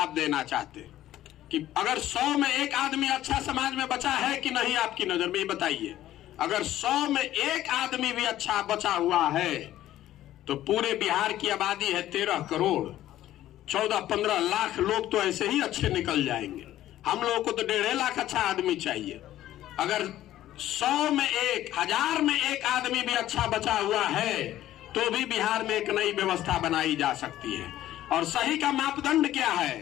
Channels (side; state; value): right; quieter; 13.5 dB